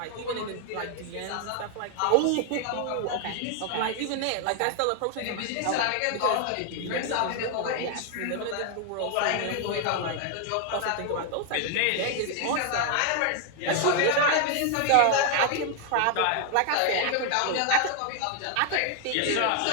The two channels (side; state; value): both; different; correlation 0.00